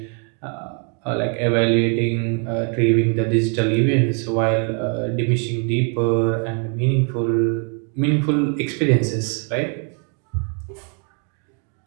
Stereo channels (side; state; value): left; quieter; 39.5 dB